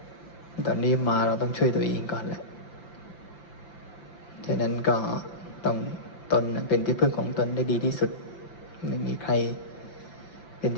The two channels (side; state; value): right; late; 5.9 ms